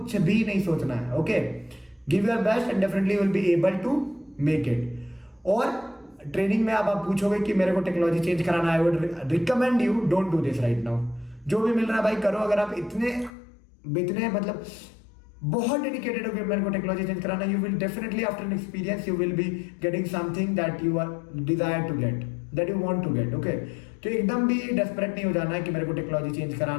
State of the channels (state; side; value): drops out; right; at 13.3 s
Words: भी नहीं सोचना है, okay? Give your best and definitely will be able to make it. और ट्रेनिंग में अब आप पूछोगे कि मेरे को टेक्नोलॉजी चेंज कराना है, I would recommend you don't do this right now. जो भी मिल रहा है भाई करो। अगर आप इतने मतलब बहुत डेडिकेटेड हो कि मेरे को टेक्नोलॉजी चेंज कराना, you will definitely after an experience you will be getting something that you are desire to get, that you want to get, okay? तो एकदम भी डेस्परेट नहीं हो जाना है कि मेरे को टेक्नोलॉजी चेंज